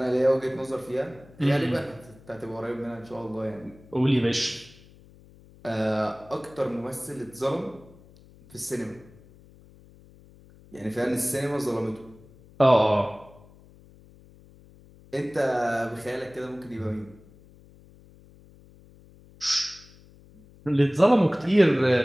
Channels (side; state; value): left; noise; hum, 24 dB below the sound